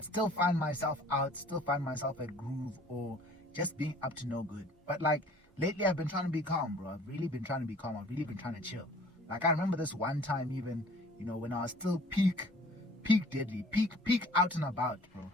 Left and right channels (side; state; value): both; normal; correlation 0.51